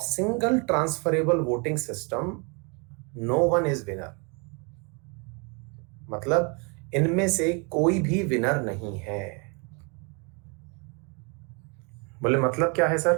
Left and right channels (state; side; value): quieter; left; 33.4 dB